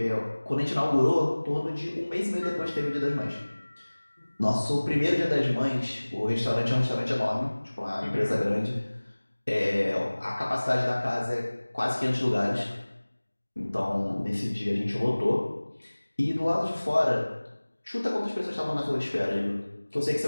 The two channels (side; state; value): both; inverted; correlation -1.00